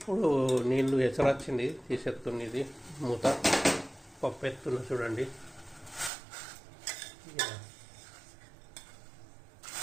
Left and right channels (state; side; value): drops out; left; at 6.1 s